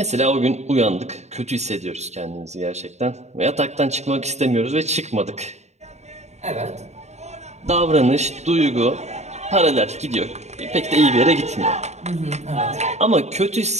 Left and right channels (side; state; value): left; late; 0.32 ms